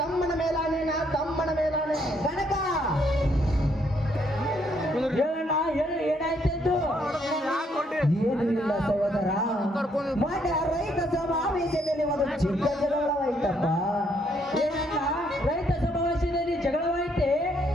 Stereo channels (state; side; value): normal; both; correlation 0.71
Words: ಮೇಲಾನೆ, ನಾ ತಮ್ಮನ ಮೇಲಾನೆ. ಕನಕ ಹೇಳಣ್ಣ, ಏನಾಯ್ತು? ಏನು ಇಲ್ಲ ಸಹೋದರ, ಮೊನ್ನೆ ರೈತ ಸಮಾವೇಶದಲ್ಲಿ ಒಂದು ಚಿಕ್ಕ ಜಗಳವಾಯ್ತಪ್ಪ. ಏನಣ್ಣ, ರೈತ ಸಮಾವೇಶದಲ್ಲಿ ಜಗಳವಾಯ್ತೆ?